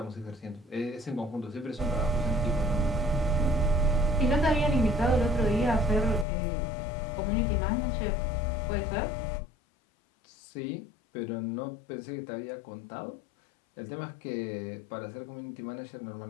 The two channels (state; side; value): drops out; right; at 6.2 s